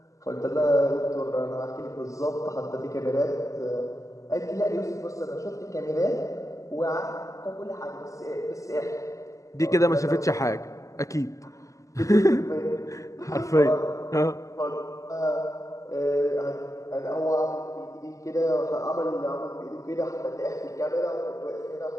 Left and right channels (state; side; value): late; right; 0.16 ms